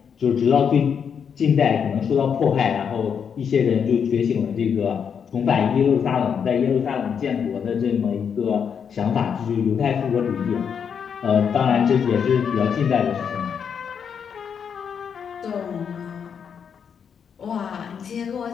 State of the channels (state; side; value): quieter; right; 7.2 dB